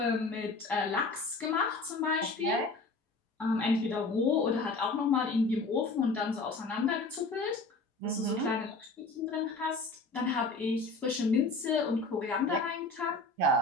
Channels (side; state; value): right; quieter; 3.4 dB